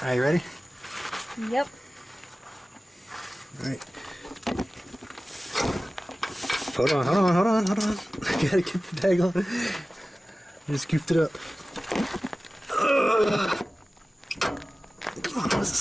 you ready? Yep. Alright. Hold on. I gotta get the tag on. I just scooped it up. Come on, what's it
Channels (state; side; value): normal; both; correlation 0.97